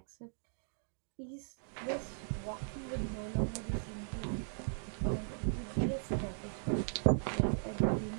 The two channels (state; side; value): silent; left; digital silence